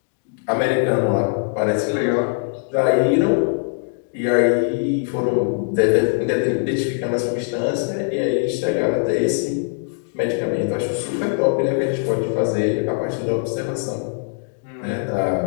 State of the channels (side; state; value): right; silent; digital silence